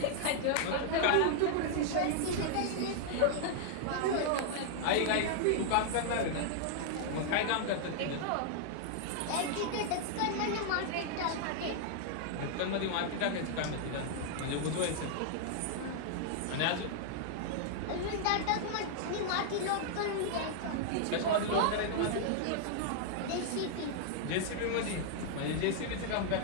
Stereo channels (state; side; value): different; both; correlation -0.01